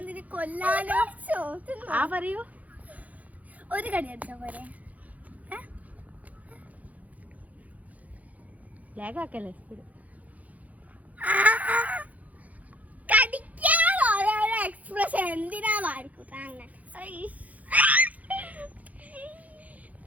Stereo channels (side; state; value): left; late; 0.074 ms